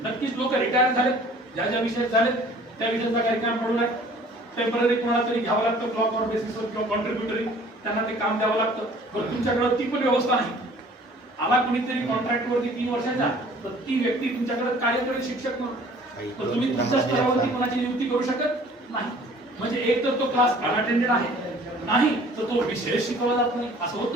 नक्कीच लोक रिटायर झालेत, ज्या ज्या विषयात झालेत त्या विषयाचा कार्यक्रम पडून आहे. टेम्पररी कोणाला तरी घ्यावं लागतं ब्लॉक ऑर बेसिसवर किंवा कॉन्ट्रीब्युटरी, त्यांना ते काम द्यावं लागतं. पण तुमच्याकडे ती पण व्यवस्था नाही. आला कोणीतरी कॉन्ट्रॅक्टवरती 3 वर्षाचा, तर ती व्यक्ती तुमच्याकडे कार्य करेल शिक्षक म्हणून, तर तुम्ही तुमच्या स्तरावरती कोणाची नियुक्ती करू शकत नाही. म्हणजे एक तर तो क्लास अनअटेंडेड आहे, नाही तर तो विषय शिकवला जात नाही. असं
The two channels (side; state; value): both; normal; correlation 0.51